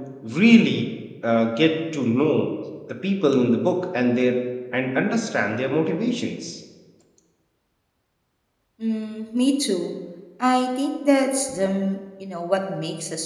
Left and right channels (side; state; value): both; identical; correlation 1.00